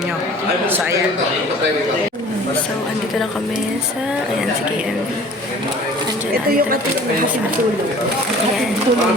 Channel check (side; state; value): both; normal; correlation 0.47